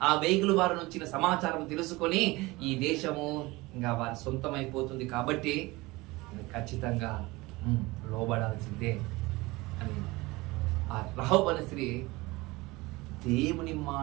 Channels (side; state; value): left; quieter; 21.8 dB